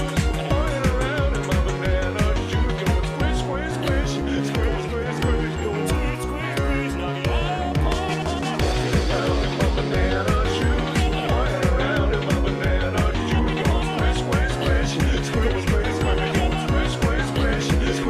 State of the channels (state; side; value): identical; both; correlation 1.00